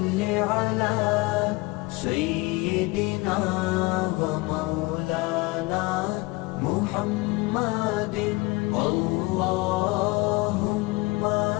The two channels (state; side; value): quieter; right; 23.5 dB